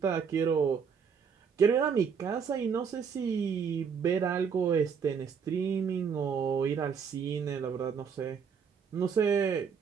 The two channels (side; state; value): left; quieter; 6.5 dB